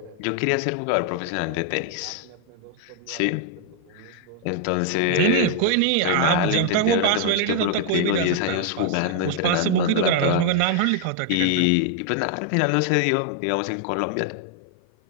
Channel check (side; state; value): both; different; correlation 0.00